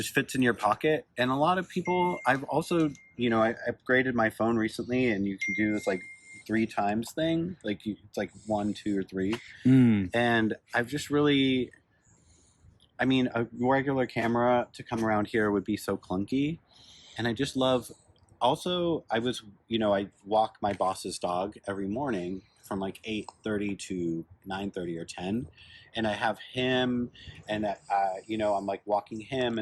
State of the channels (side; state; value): both; identical; correlation 1.00